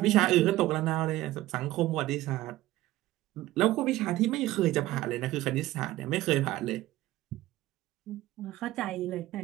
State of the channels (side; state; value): left; quieter; 16.3 dB